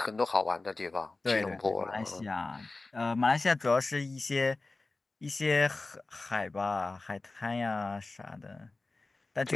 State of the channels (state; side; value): quieter; right; 3.4 dB